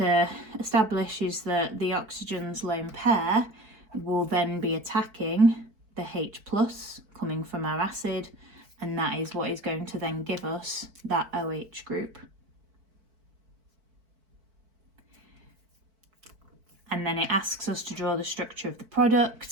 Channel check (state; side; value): late; left; 4.5 ms